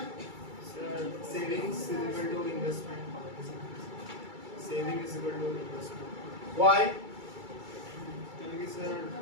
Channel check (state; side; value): late; left; 2.3 ms